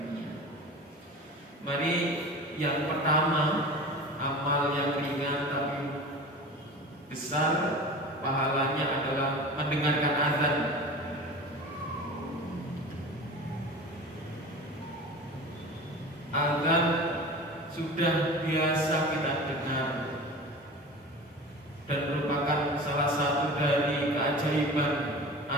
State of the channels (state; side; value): normal; both; correlation 0.35